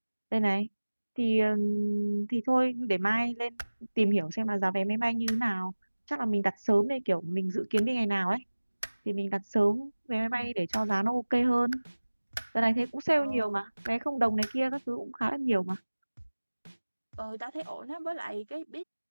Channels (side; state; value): both; inverted; correlation -1.00